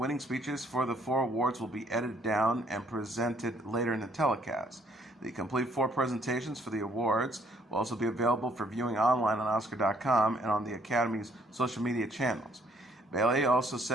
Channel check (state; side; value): normal; both; correlation 0.65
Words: speeches for the 4 awards will be edited down and presented later in the telecast. The complete 4 presentations for the awards will also be available for viewing online on Oscar.com and on the Academy's social media channels. Bailey also